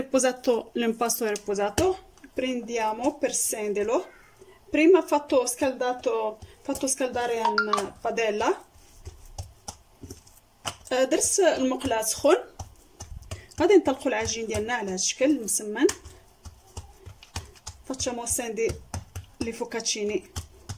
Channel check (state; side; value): identical; both; correlation 1.00